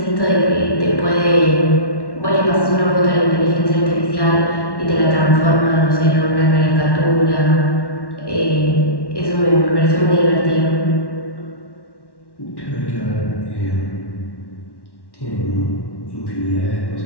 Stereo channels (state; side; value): late; right; 1.1 ms